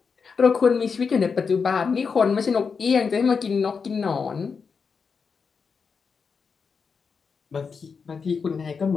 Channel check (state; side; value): quieter; right; 5.5 dB